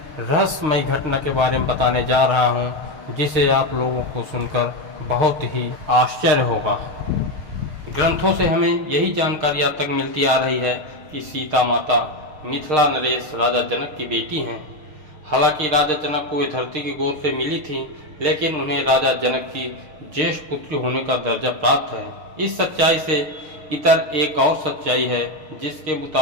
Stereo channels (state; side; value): late; left; 6.5 ms